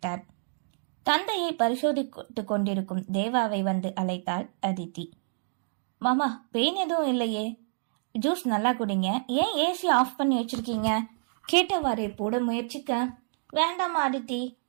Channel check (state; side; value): silent; left; digital silence